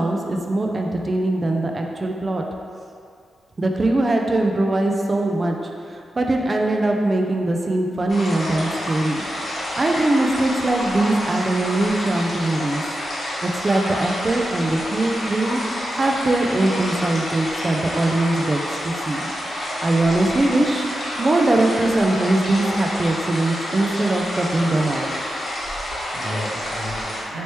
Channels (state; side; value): normal; both; correlation 0.91